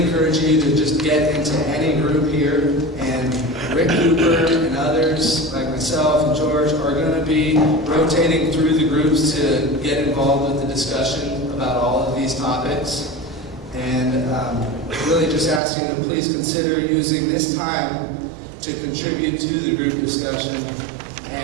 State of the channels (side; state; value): left; drops out; at 15.6 s